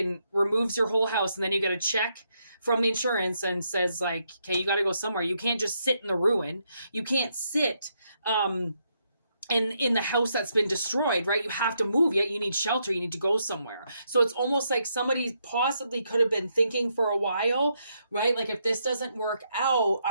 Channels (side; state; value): both; inverted; correlation -0.78